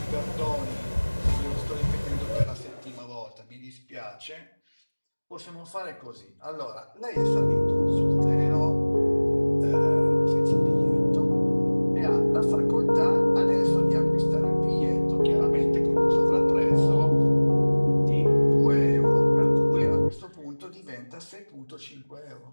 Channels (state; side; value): inverted; both; correlation -1.00